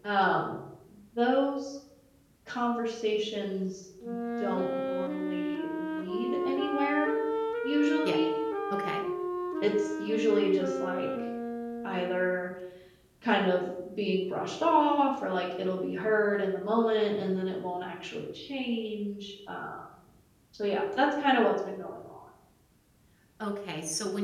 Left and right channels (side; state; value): both; identical; correlation 1.00